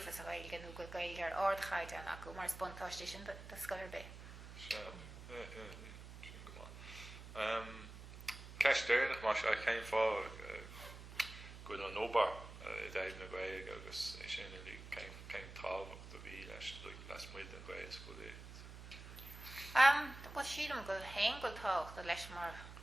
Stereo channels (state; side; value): noise; right; hum, 13 dB below the sound